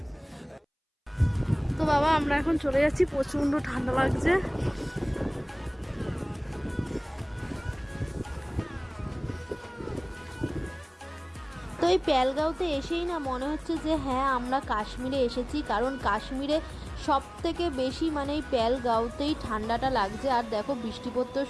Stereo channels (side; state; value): both; identical; correlation 1.00